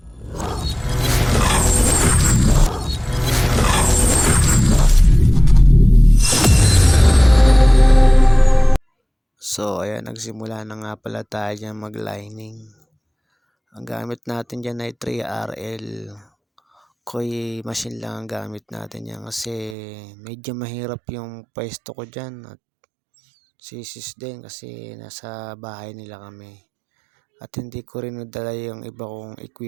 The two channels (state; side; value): drops out; left; at 19.8 s